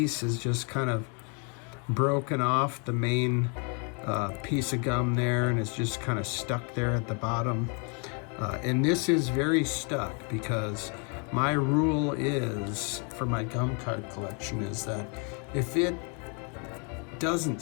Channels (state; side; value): quieter; right; 36.6 dB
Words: is just kind of broken off the main piece of gum there, and it's just kind of stuck there at the bottom. And this is very stuck, because my rule is, for my gum card collection, is that if it doesn't